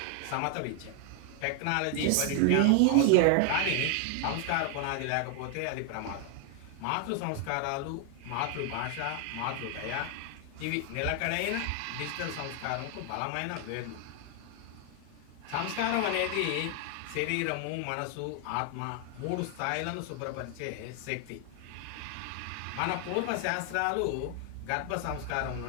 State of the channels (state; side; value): different; both; correlation 0.00